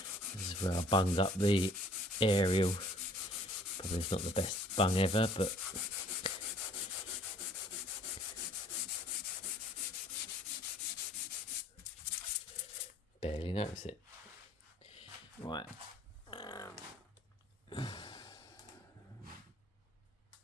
This is where I bunged up the aerial. Probably it's not the best bung ever, but barely notice it. Right.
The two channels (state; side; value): normal; both; correlation 0.56